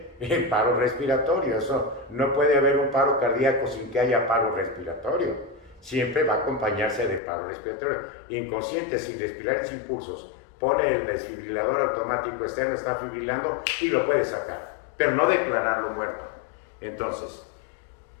en paro respiratorio. Eso no puede haber un paro cardíaco sin que haya paro respiratorio. Siempre va a acompañarse de paro respiratorio. Inconsciente, sin respirar y sin pulsos, pone el desfibrilador automático externo, está fibrilando y lo puede sacar, pero no declararlo muerto. Entonces,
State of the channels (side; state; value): right; drops out; at 7.2 s